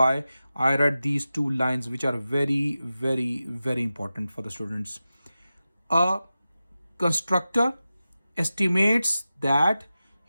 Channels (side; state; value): both; inverted; correlation -0.94